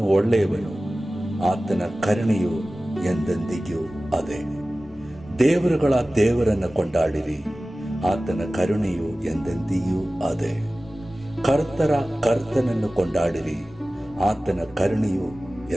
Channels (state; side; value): normal; both; correlation 0.96